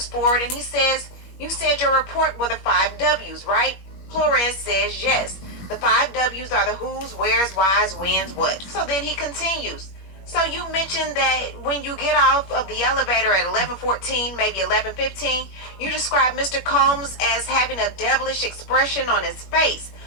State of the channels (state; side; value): late; right; 21 ms